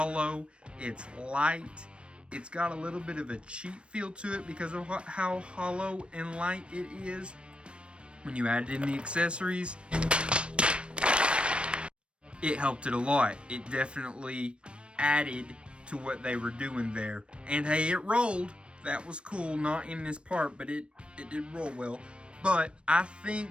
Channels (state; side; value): late; left; 0.058 ms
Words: It's light. It's got a little bit of a cheap feel to it because of how hollow and light it is. When you added in the accessories, it helped it a lot. It definitely added to what they were doing there. And hey, it rolled. That was cool. Not in this part, but it did roll well. But I think